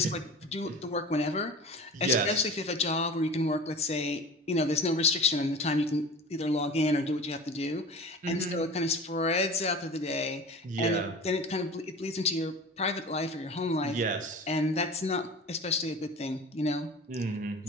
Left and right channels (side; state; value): both; normal; correlation 0.36